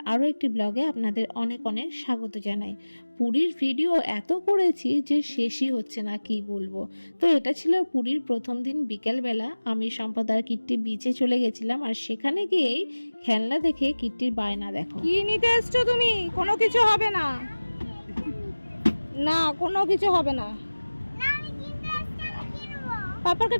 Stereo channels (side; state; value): both; inverted; correlation -1.00